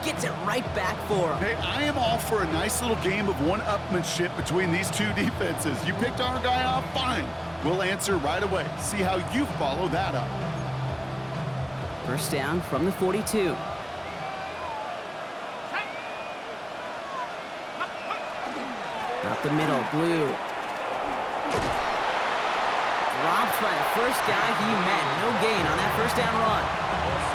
gets it right back for them. Hey, I am all for a nice little game of one-upmanship between these two defenses. You picked our guy off, fine. We'll answer right away. See how you follow that up. First down from the 42. Up the middle, Blue. Dropped by the first guy he met. No gain on that first down run.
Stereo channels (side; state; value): both; identical; correlation 1.00